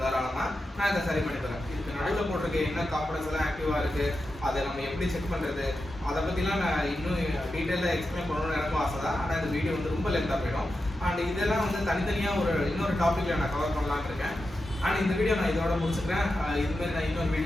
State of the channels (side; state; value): both; normal; correlation 0.90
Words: தாராளமாக, நான் இதை சரி பண்ணி தரேன். இதுக்கு நடுவில் போட்டிருக்க என்ன காம்பனன்ஸ் எல்லாம் ஆக்டிவாக இருக்குது, அதை நம்ம எப்படி செக் பண்ணுறது, அதை பற்றிலாம் நான் இன்னும் டீட்டெயிலாக எக்ஸ்பிளைன் பண்ணணும்னு எனக்கும் ஆசை தான். ஆனால் இந்த வீடியோ வந்து ரொம்ப லென்த்தாக போயிடும். அண்ட் இதெல்லாம் வந்து தனித்தனியாக இன்னொரு டாப்பிக்கில் நான் கவர் பண்ணலான்னு இருக்கேன். அண்ட் இந்த வீடியோ நான் இதோட முடிச்சுக்கிறேன். இதுமாரி நான் இன்னொரு